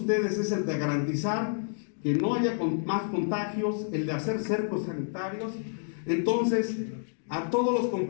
es el de garantizar que no haya más contagios, el de hacer cercos sanitarios. Entonces, a todos los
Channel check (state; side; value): silent; right; digital silence